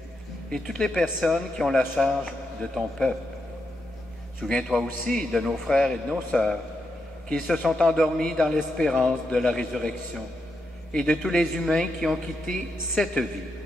et toutes les personnes qui ont la charge de ton peuple. Souviens-toi aussi de nos frères et de nos sœurs qui se sont endormis dans l'espérance de la résurrection et de tous les humains qui ont quitté cette vie.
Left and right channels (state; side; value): normal; both; correlation 0.83